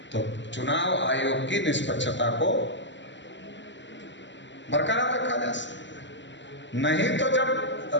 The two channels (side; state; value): right; late; 0.53 ms